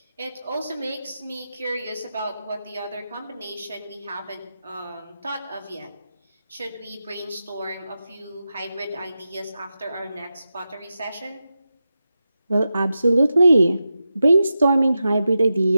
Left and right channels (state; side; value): inverted; both; correlation -0.90